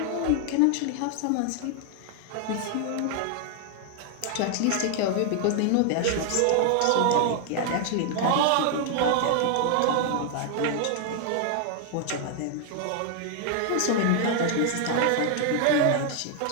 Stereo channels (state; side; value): different; both; correlation 0.00